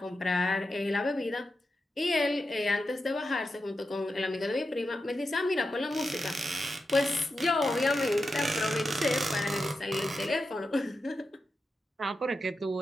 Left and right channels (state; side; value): normal; both; correlation 0.89